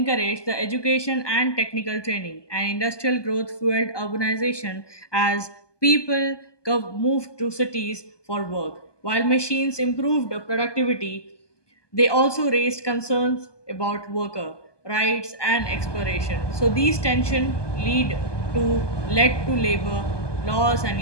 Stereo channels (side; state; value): right; late; 1.2 ms